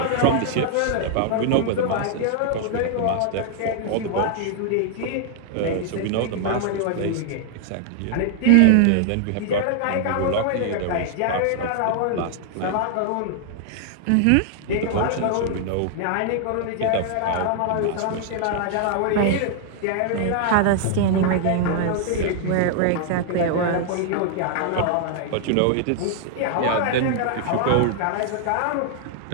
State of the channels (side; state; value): both; different; correlation -0.01